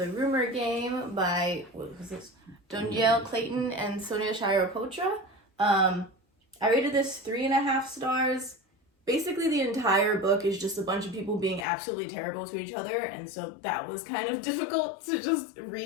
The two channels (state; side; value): drops out; right; at 11.7 s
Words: Rumor Game by, what was this? Donielle Clayton and Sonia Shirapotra. I rated this 3.5 stars. Basically, the entire book is just a bunch of people being absolutely terrible to each other, and so that was kind of difficult to just